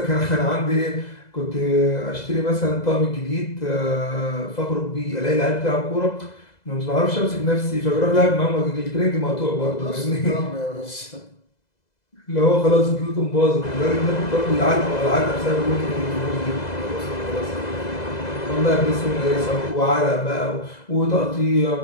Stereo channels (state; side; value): late; right; 2.0 ms